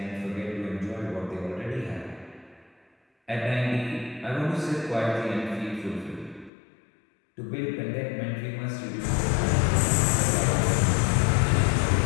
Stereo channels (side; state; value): right; drops out; at 6.5 s